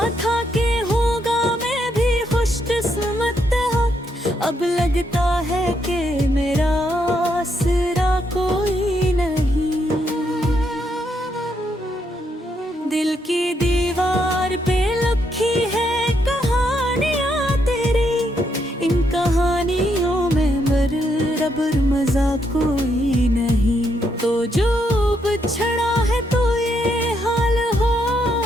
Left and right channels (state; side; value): normal; both; correlation 0.77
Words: था कि होगा मैं भी खुशकिस्मत, अब लगता है कि मेरा आसरा कोई नहीं। दिल की दीवार पे लिखी है कहानियाँ तेरी, इन कहानियों में बराबर मजा कोई नहीं। तो जो बिछड़ा है तो ये हाल हो